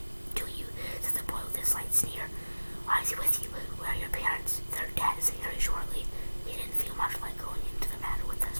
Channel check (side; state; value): both; inverted; correlation -1.00